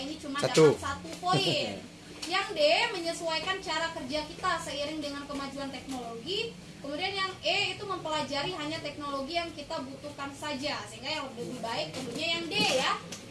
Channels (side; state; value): both; identical; correlation 1.00